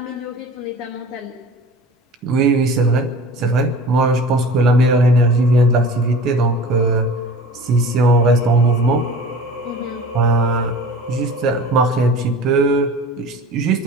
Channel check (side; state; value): both; normal; correlation 0.40